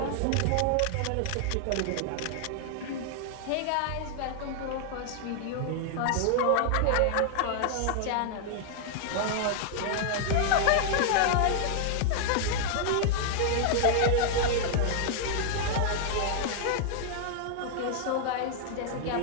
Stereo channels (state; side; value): different; both; correlation 0.00